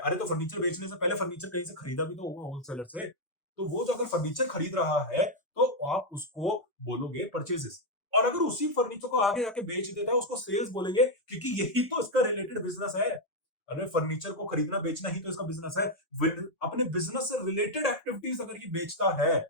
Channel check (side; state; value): both; normal; correlation 0.00